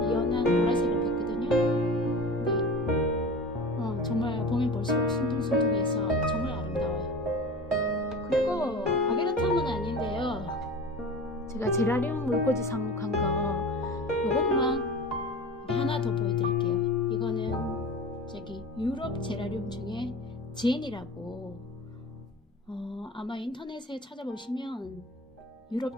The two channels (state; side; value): normal; both; correlation 0.34